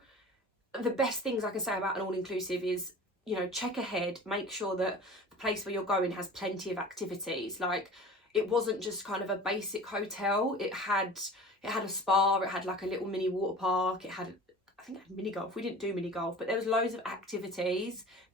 the best things I can say about an all-inclusive is, you know, check ahead, make sure that the place where you're going has plenty of activities. Like, it wasn't just kind of a basic hotel. It had a spa, it had like a little mini water park, I think it had mini golf. We didn't do mini golf, but there was loads of activities.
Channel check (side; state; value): both; normal; correlation 0.40